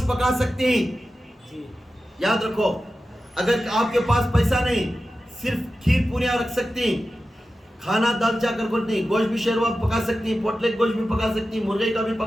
پکا سکتے ہیں, یاد رکھو. اگر آپ کے پاس پیسہ نہیں, صرف کھیر پوریاں رکھ سکتے ہیں, کھانا دال چا کر نہیں, گوشت بھی شیروا پکا سکتی ہیں, پوٹلے گوشت بھی پکا سکتی ہیں, مرغے کا بھی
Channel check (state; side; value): normal; both; correlation 0.93